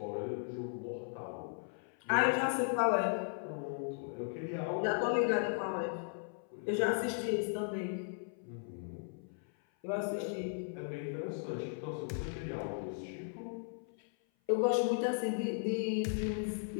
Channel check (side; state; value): right; silent; 53 dB below the other